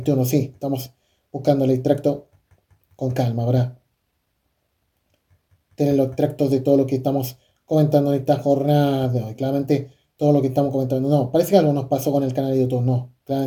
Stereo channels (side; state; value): both; identical; correlation 1.00